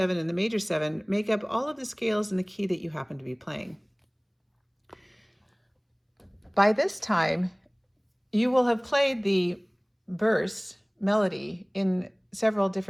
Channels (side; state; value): both; identical; correlation 1.00